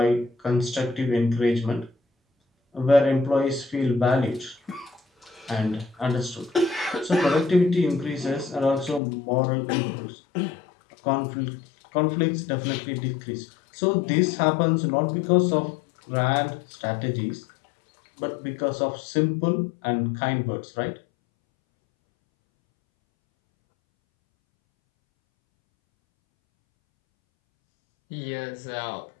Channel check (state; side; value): drops out; right; at 9.0 s